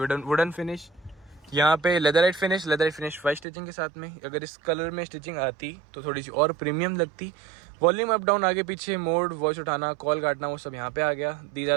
फिनिश, यहाँ पे लेदराइट फिनिश 5 स्टिचिंग के साथ में। अगर इस कलर में स्टिचिंग आती तो थोड़ी सी और प्रीमियम लगती। वॉल्यूम अप डाउन, आगे पीछे मोड, वॉइस उठाना, कॉल काटना, वो सब यहाँ पे आ गया। These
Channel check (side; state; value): left; drops out; at 3.5 s